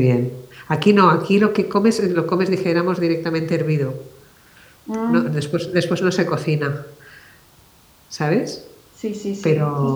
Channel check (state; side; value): identical; both; correlation 1.00